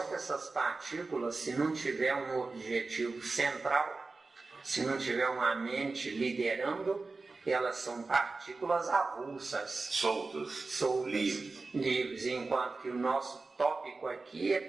que essas partículas, se não tiver um objetivo central, se não tiver uma mente liderando, elas são partículas avulsas. Soltas. Livres. Enquanto que o nosso tópico aqui é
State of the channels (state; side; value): quieter; left; 3.8 dB